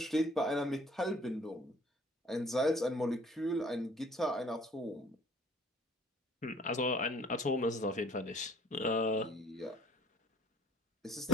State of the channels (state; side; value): normal; both; correlation 0.56